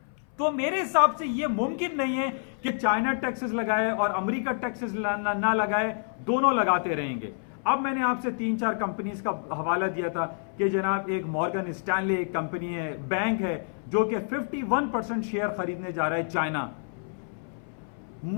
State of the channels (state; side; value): silent; right; 59 dB below the other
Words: तो मेरे हिसाब से यह मुमकिन नहीं है कि चाइना टैक्सेस लगाए और अमेरिका टैक्सेस ना लगाए, दोनों लगाते रहेंगे। अब मैंने आपसे 3-4 कंपनीज का हवाला दिया था कि जनाब एक मॉर्गन स्टैनले एक कंपनी है, बैंक है, जो कि 51% शेयर खरीदने जा रहा है चाइना।